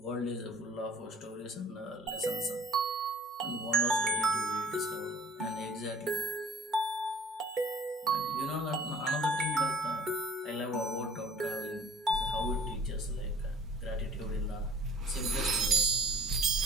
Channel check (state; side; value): normal; both; correlation 0.50